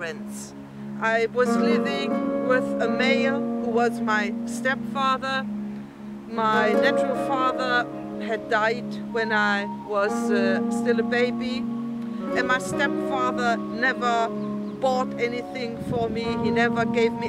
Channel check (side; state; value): both; identical; correlation 1.00